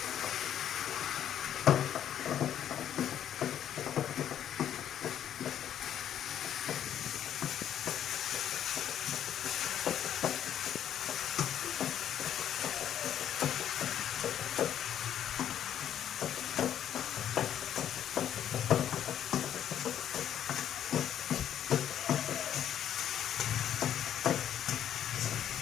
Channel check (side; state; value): right; quieter; 10.2 dB